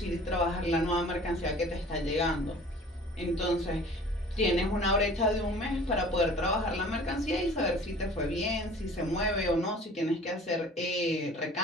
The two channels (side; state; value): both; normal; correlation 0.47